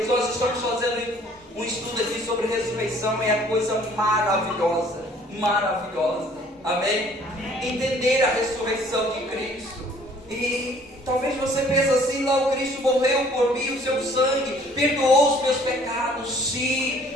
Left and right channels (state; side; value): normal; both; correlation 0.56